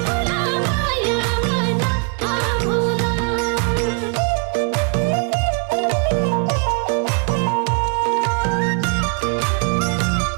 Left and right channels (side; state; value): left; quieter; 35.1 dB